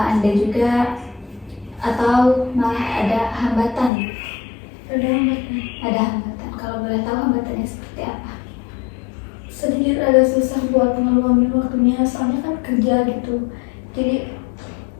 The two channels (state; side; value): drops out; right; at 3.9 s